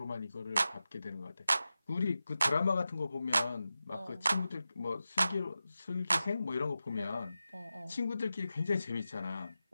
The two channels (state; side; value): inverted; both; correlation -0.93